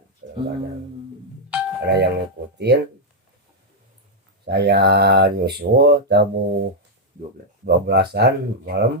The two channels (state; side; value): normal; both; correlation -0.03